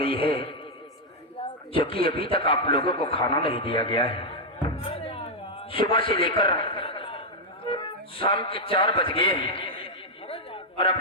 है जो कि अभी तक आप लोगों को खाना नहीं दिया गया है? सुबह से लेकर शाम के 4 बज गए हैं और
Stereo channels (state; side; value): normal; both; correlation -0.02